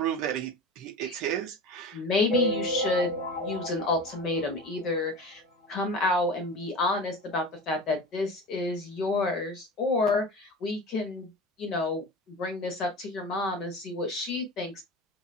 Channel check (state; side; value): normal; both; correlation 0.32